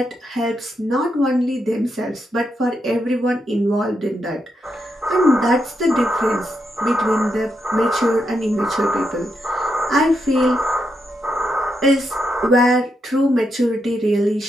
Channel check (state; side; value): normal; both; correlation 0.83